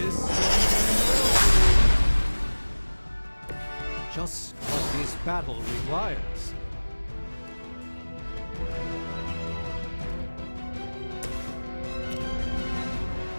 just what this battle requires.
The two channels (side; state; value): both; inverted; correlation -1.00